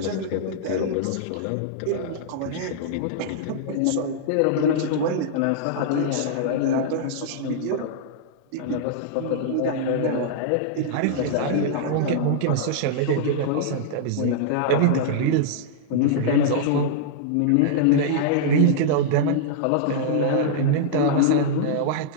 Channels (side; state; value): both; different; correlation -0.02